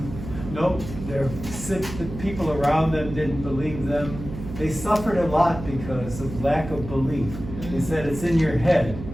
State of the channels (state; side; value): noise; right; hum, 10 dB below the sound